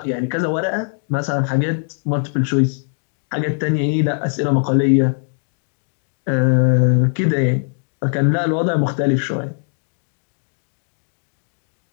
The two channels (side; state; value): right; silent; 66 dB below the other